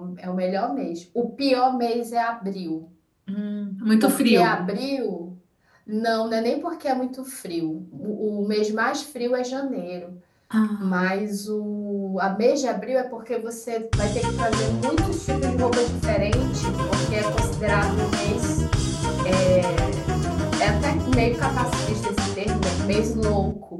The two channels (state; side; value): identical; both; correlation 1.00